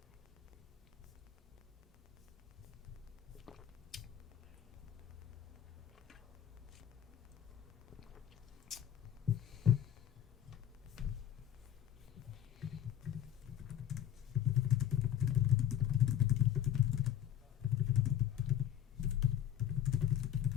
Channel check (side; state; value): right; quieter; 10.5 dB